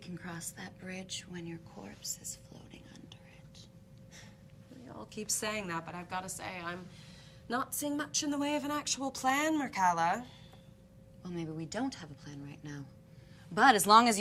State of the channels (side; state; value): both; identical; correlation 1.00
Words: cross that bridge when your corpse is floating under it. We all keep saying that, but I've got to say, I'm not seeing much in the way of an actual plan, Mircalla. Well, maybe we don't have a plan right now. But as long as